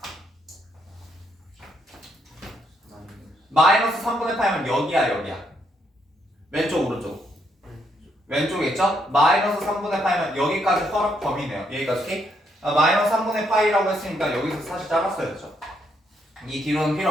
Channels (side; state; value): both; normal; correlation 0.75